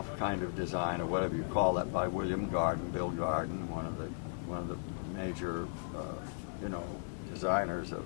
kind of design, or whatever you call that, by William Garden, Bill Garden, one of the major, designers of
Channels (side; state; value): right; silent; 54 dB below the other